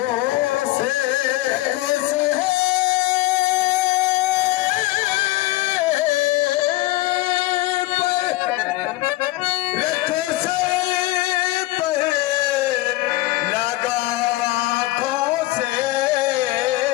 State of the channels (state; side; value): quieter; right; 18.6 dB